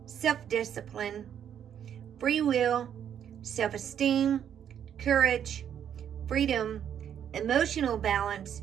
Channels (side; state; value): left; quieter; 9.1 dB